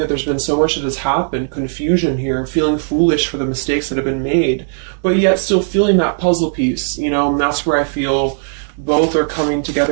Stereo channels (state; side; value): silent; left; digital silence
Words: there's been so much that has happened, confusion here, feeling foolish for the mistakes that have been made, but yet still feeling that puzzle piece, you know, and that's where I feel both are coming